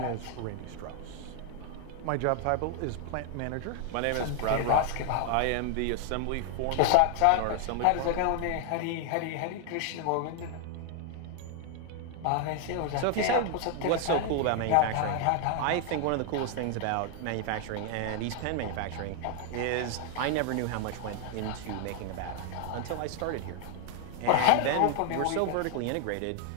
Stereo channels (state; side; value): different; both; correlation 0.00